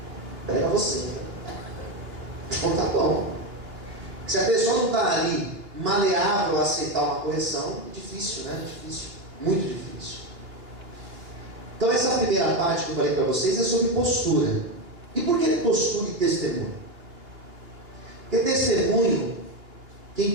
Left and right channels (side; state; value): left; late; 2.9 ms